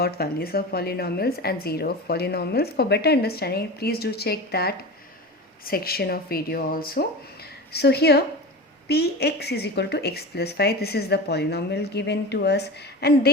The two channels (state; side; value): normal; both; correlation 0.29